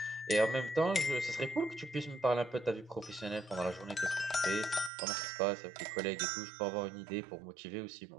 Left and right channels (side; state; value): left; drops out; at 4.9 s